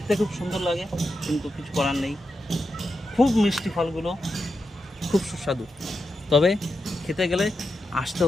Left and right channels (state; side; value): normal; both; correlation 0.87